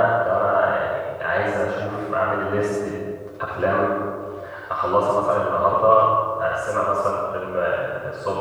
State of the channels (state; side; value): identical; both; correlation 1.00